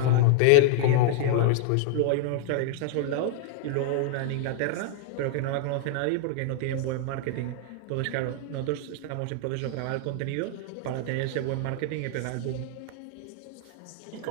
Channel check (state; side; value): different; both; correlation -0.01